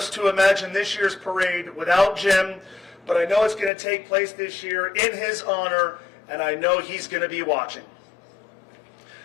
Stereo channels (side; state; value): right; drops out; at 3.7 s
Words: to imagine this year's parade without Jim, but I know it's going to take place this year in his honor, and I know he's going to be watching.